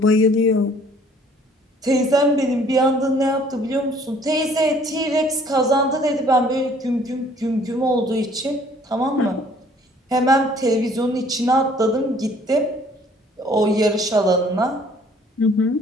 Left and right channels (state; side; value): normal; both; correlation 0.58